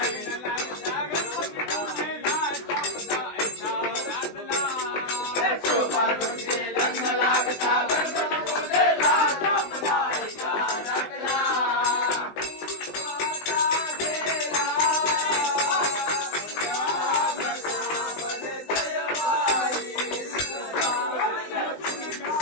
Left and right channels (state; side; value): late; right; 20 ms